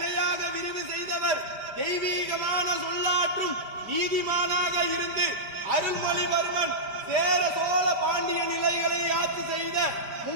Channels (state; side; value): late; left; 5.1 ms